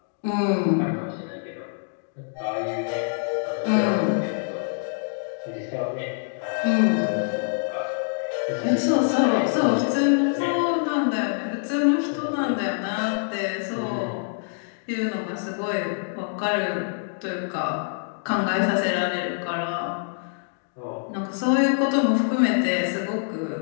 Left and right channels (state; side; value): silent; right; digital silence